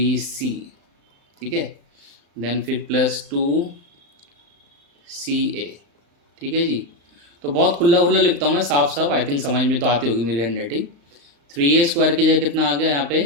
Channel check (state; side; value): late; left; 35 ms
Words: ठीक है, देन फिर प्लस 2ca, ठीक है जी। तो बहुत खुला खुला लिखता हूँ मैं, साफ साफ, आई थिंक समझ में तो आती होगी मेरी हैंड राइटिंग। 3a स्क्वायर की जगह कितना आ गया यहाँ